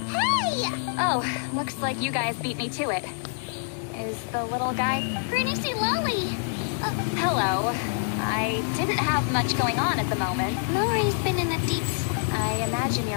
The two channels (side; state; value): right; silent; 61 dB below the other